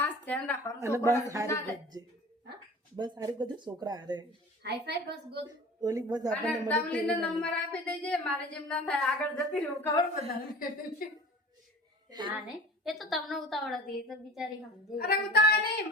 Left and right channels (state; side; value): normal; both; correlation 0.41